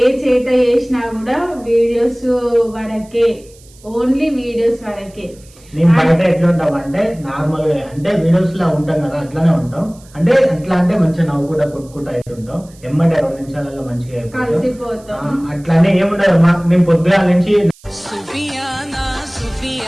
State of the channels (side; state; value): right; noise; hiss, 26 dB below the sound